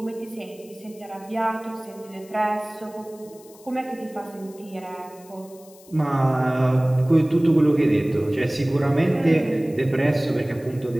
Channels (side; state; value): left; noise; hiss, 24 dB below the sound